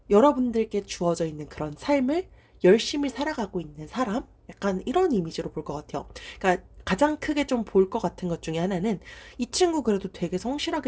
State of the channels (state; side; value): identical; both; correlation 1.00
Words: 여러분들께 주어져 있는 그런 삶을 열심히 살아가고 있는 사람? 약간 이런 이미지로 볼 것 같아요. 그러니까 가장 크게 좀 볼 것 같은 것 중에 하나는 이 친구 그래도 되게